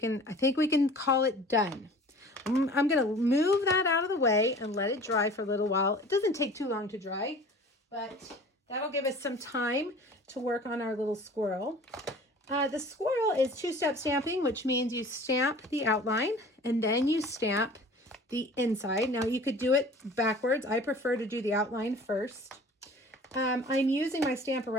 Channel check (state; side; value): normal; both; correlation 0.45